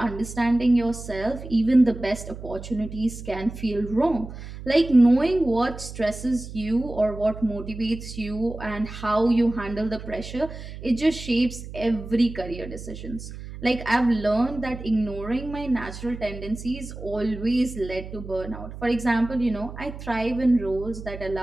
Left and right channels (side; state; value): right; noise; hum, 11 dB below the sound